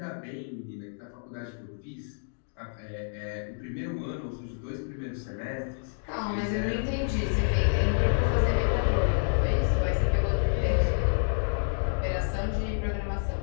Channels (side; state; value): right; silent; digital silence